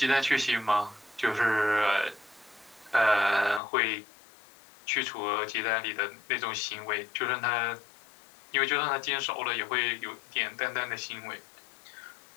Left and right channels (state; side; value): drops out; right; at 3.6 s